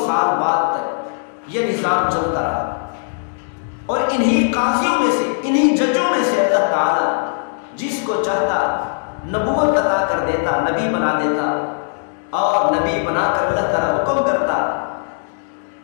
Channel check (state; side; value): silent; right; digital silence